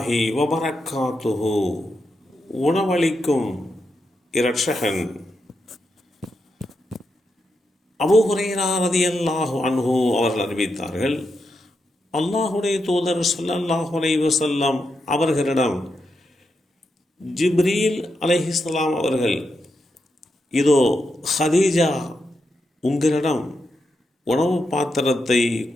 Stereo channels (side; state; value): both; normal; correlation 0.85